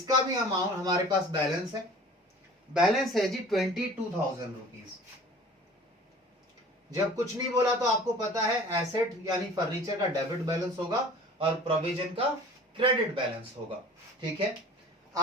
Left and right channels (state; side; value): normal; both; correlation 0.45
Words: भी अमाउंट हमारे पास बैलेंस है। बैलेंस है जी 22,000 रुपीज। जब कुछ नहीं बोला तो आपको पता है एसेट यानी फर्नीचर का डेबिट बैलेंस होगा और प्रोविजन का क्रेडिट बैलेंस होगा। ठीक है,